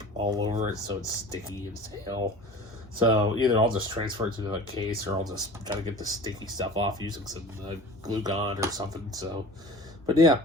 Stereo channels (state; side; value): normal; both; correlation 0.40